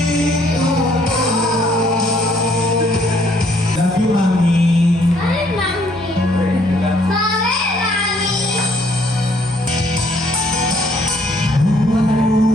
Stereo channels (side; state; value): both; normal; correlation 0.65